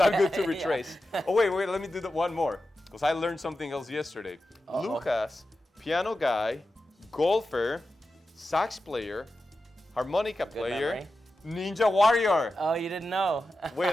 good to retrace. Oh, wait, let me do one more, because I learned something else yesterday. Lucas, piano guy, golfer, sax player, harmonica player, memory. ninja warrior. Oh, you didn't know. Wait,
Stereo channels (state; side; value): normal; both; correlation 0.92